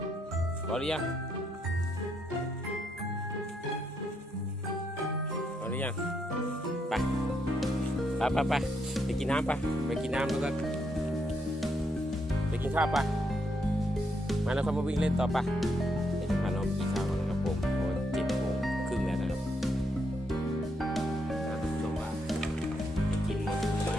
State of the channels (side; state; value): both; normal; correlation 0.77